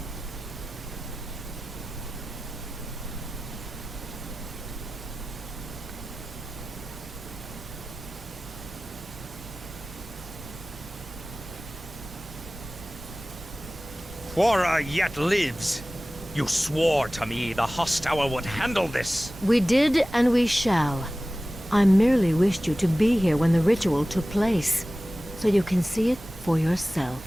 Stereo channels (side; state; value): both; normal; correlation 0.97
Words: Quora yet lives. You swore to me the Hosttower would handle this. We did, and we shall. I merely wished you to be here when the ritual took place, so you can see it for yourself.